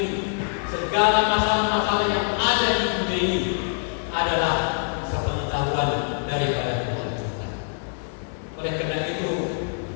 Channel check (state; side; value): silent; right; 62 dB below the other